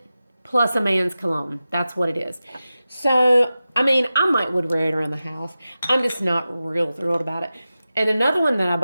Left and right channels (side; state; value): both; inverted; correlation -0.94